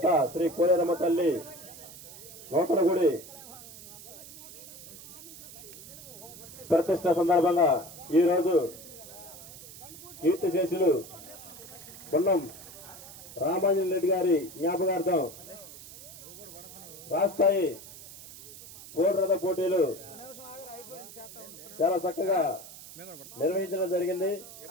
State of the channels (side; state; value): right; noise; hiss, 16 dB below the sound